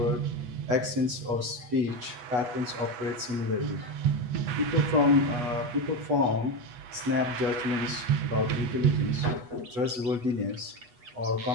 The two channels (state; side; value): late; left; 8.2 ms